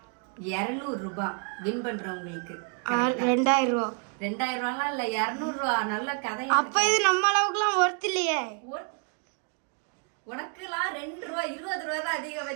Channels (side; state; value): left; quieter; 39.7 dB